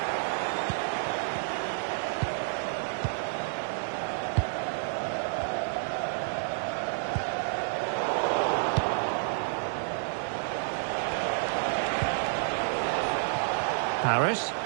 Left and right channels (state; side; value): silent; left; digital silence